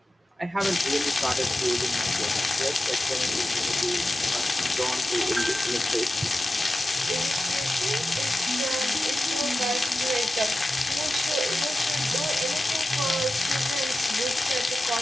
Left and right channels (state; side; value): normal; both; correlation 0.94